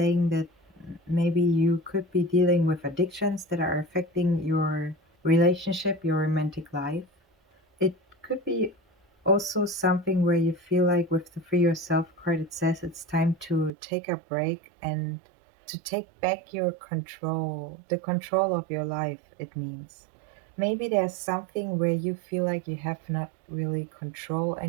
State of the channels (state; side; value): drops out; left; at 13.7 s